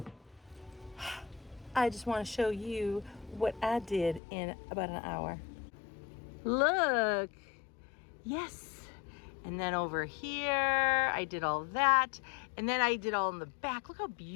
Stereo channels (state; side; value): drops out; right; at 4.2 s